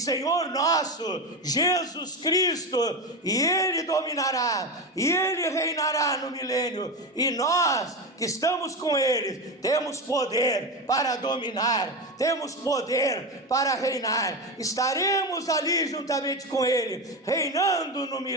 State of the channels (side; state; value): both; normal; correlation 0.19